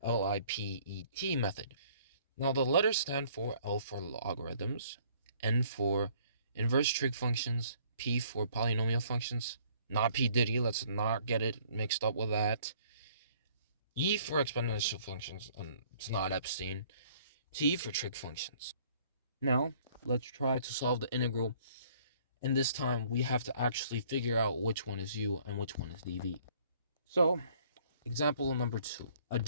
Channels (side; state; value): both; inverted; correlation -0.59